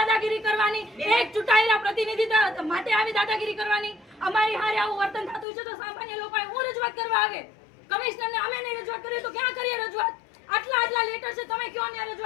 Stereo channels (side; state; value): right; drops out; at 5.5 s